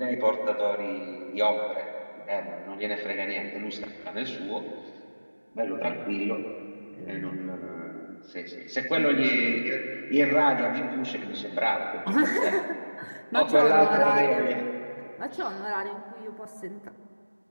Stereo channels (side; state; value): both; inverted; correlation -1.00